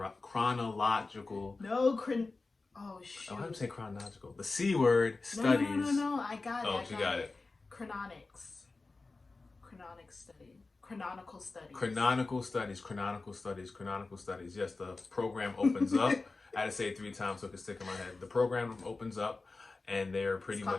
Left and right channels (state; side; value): quieter; right; 3.7 dB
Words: no, oh Oh, how do you shoot. say chronological? The C word studies. No. I got it. Oh, I she got got it. it. Chrononics. Chronic study. Chronological studies. Canonical studies. Canonical studies. Canonical studies. Yes, the program opens up. I had to say it 3 times so it could stick in my head. The program opens up, and they're It's pretty called the